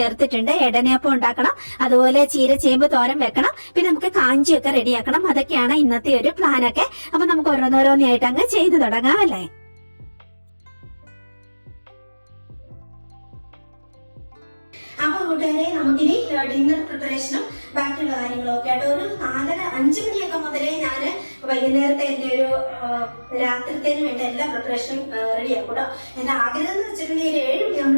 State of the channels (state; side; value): inverted; both; correlation -1.00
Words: ചേർത്തിട്ടുണ്ട്. എടനയപ്പം ഉണ്ടാക്കണം, അതുപോലെ ചീര ചേമ്പ് തോരൻ വെക്കണം, പിന്നെ നമുക്ക് കാഞ്ചിയൊക്കെ റെഡിയാക്കണം. അതൊക്കെയാണ് ഇന്നത്തെ ഒരു പ്ലാനൊക്കെ. അപ്പൊ നമുക്ക് ഓരോന്നോരോന്നായിട്ട് അങ്ങ് ചെയ്തു തുടങ്ങാം അല്ലേ. അപ്പൊ കൂട്ടുകാരെ, നമുക്കിനി ഡിന്നർ പ്രിപ്പറേഷനും ബാക്കിയുള്ള കാര്യങ്ങളൊക്കെ ആയിട്ട് ഒരു 4:30-5 മണിയൊക്കെ മുതലേ ഞാൻ വൈകുന്നേരത്തെ എന്റെ ഒരു രാത്രിത്തേന് വേണ്ട എല്ലാ പ്രിപ്പറേഷനും റെഡിയാക്കും കേട്ടോ. എന്റെ ആഗ്രഹം എന്ന് വെച്ചിട്ടുണ്ടെങ്കിൽ 7